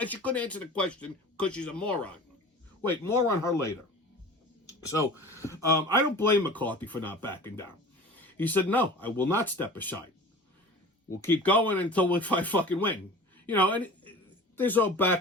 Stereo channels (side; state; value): both; normal; correlation 0.38